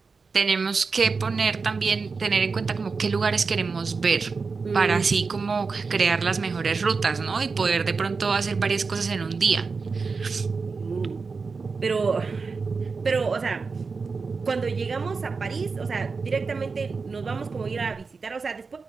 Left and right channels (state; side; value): quieter; left; 4.7 dB